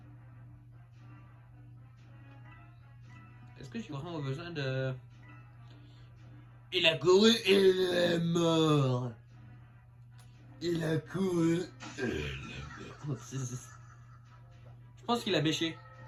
Est-ce que j'ai vraiment besoin de... Il a couru et il est mort. Il a couru et il est mort. Je pense qu'il a bêché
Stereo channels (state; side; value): identical; both; correlation 1.00